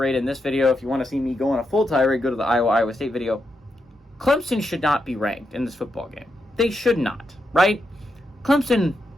in this video. If you want to see me go on a full tirade, go to the Iowa State video. Clemson should not be ranked in this football game. They should not, right? Clemson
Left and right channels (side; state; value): both; normal; correlation 0.84